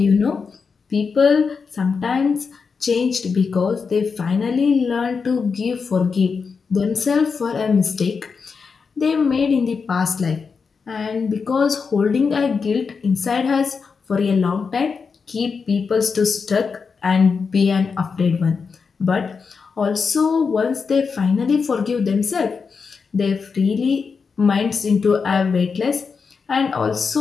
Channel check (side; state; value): right; quieter; 5.4 dB